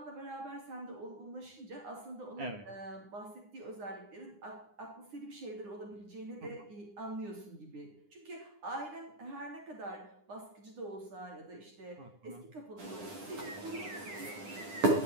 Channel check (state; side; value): late; left; 9.9 ms